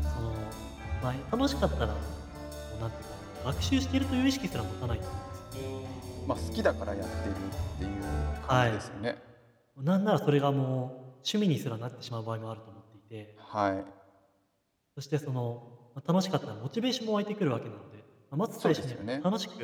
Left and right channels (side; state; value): both; identical; correlation 1.00